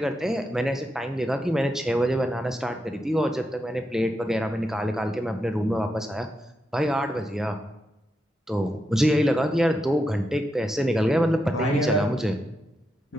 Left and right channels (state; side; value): normal; both; correlation 0.85